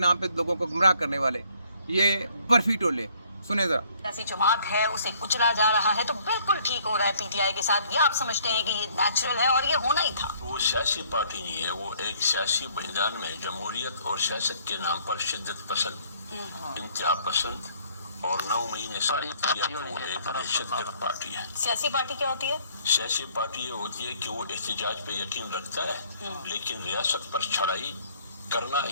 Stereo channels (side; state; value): both; inverted; correlation -0.61